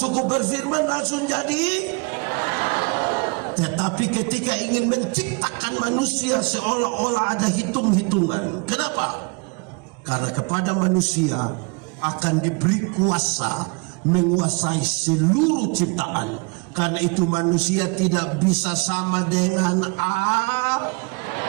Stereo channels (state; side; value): quieter; left; 31.1 dB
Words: berfirman langsung jadi. Tetapi ketika ingin menciptakan manusia, seolah-olah ada hitung-hitungan. Kenapa? Karena kepada manusia akan diberi kuasa menguasai seluruh ciptaan. Karena itu manusia tidak bisa sama dengan